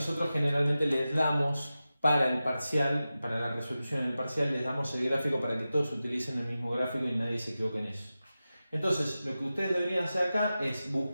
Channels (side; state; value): both; inverted; correlation -0.94